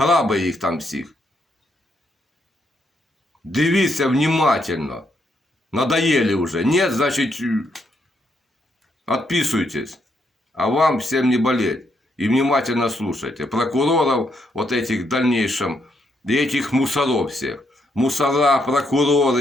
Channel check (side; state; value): both; normal; correlation 0.76